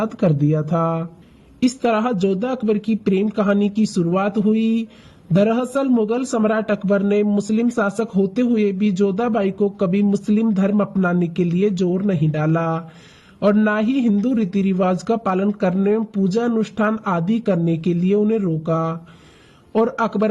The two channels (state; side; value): identical; both; correlation 1.00